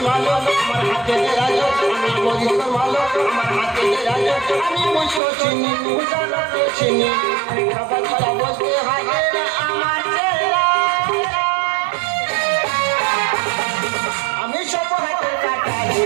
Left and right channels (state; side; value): drops out; left; at 5.2 s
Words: আমি সব হাতের কাটারি